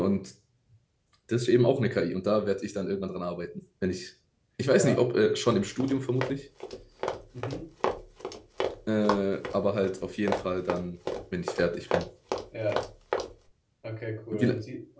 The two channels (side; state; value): both; identical; correlation 1.00